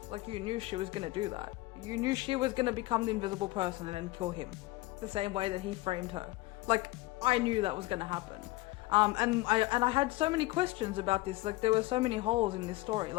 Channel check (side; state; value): right; quieter; 19.8 dB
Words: Like, you knew she was going to do that. You knew she was going to become the invisible person and then kill him, the same way that he framed her. Like, I knew that was going to happen. And I had so many questions about this. Like, there were so many holes in this story.